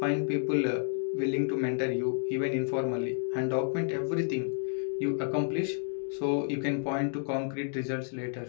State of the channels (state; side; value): silent; right; 57 dB below the other